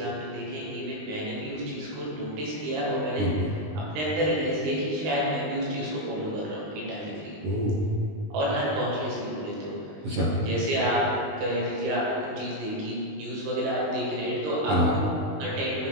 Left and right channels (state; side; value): late; left; 19 ms